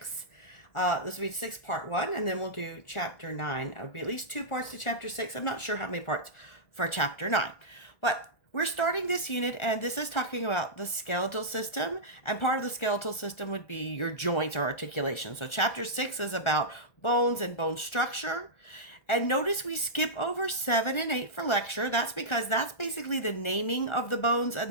This will be 6 Part 1, and then we'll do Chapter 9. It will be at least 2 parts to Chapter 6. I'm not sure how many parts for Chapter 9. But we're starting this unit, and this is talking about the skeletal system, and part of the skeletal system would be your joints or articulation. So Chapter 6 is about bones and bone structure. And notice we skip over 7 and 8 for lecture. That's because that's basically the naming of the bones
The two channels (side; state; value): right; late; 1.4 ms